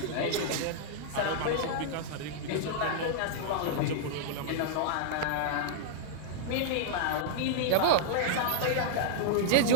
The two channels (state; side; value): different; both; correlation -0.02